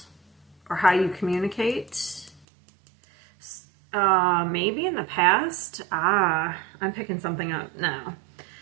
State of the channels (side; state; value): left; drops out; at 2.5 s